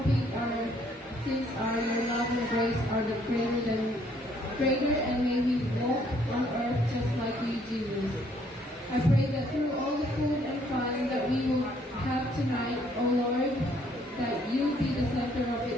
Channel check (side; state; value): both; normal; correlation 0.65